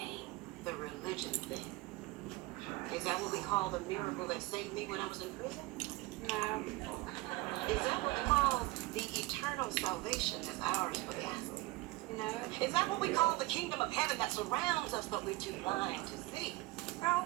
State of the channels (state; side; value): quieter; left; 20.5 dB